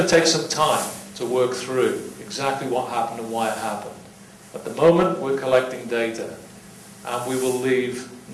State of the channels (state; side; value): identical; both; correlation 1.00